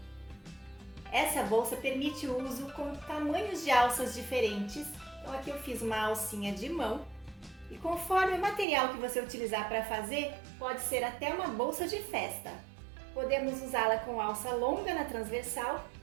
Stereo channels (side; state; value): left; drops out; at 8.7 s